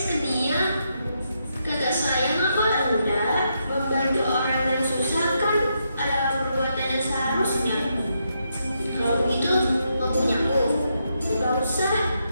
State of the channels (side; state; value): both; inverted; correlation -0.80